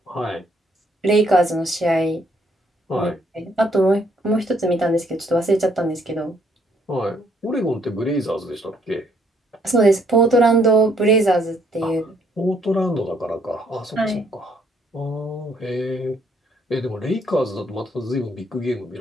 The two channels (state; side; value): normal; both; correlation 0.67